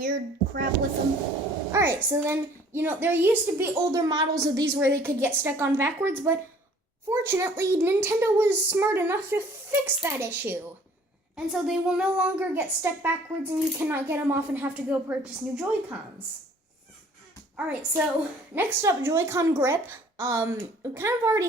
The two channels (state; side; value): normal; both; correlation 0.54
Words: crap with them. Alright, so then, there used to be older models of these where they could get stuck on backwards, but fortunately, Nintendo was smart enough to fix that issue. And so they will no longer get stuck backwards and you cannot get them off and have to go purchase new Joy-Cons. Alright, so next up, Joy-Con grip. We kind of